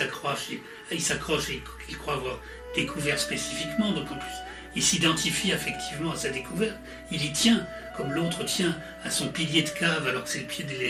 et qu'il croit avoir découvert spécifiquement, donc en plus il s'identifie affectivement à sa découverte, il y tient, comme l'autre tient à son pilier de cave alors que c'est le pied de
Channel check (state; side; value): identical; both; correlation 1.00